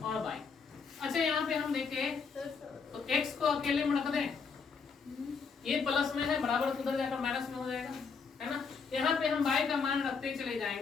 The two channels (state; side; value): quieter; right; 5.4 dB